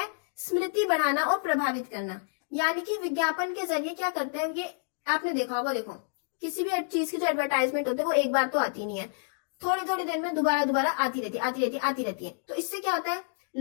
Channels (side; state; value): right; silent; digital silence